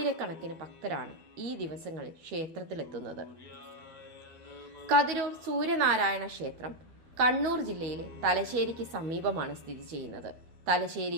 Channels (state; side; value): late; left; 13 ms